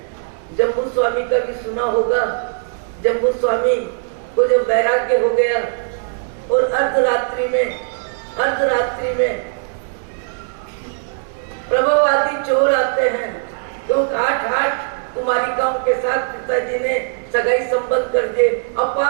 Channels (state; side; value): silent; left; 66 dB below the other